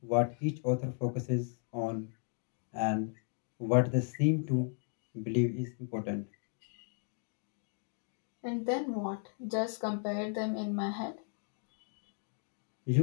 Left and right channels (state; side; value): silent; right; 54 dB below the other